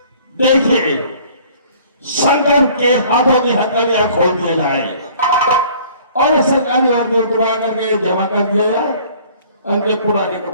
देखिए, संगम के हाथों की हथकड़ियां खोल दिया जाए और सरकारी वर्दी उतरवा करके जमा कर दिया जाए, उनके पुराने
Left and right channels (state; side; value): inverted; both; correlation -0.53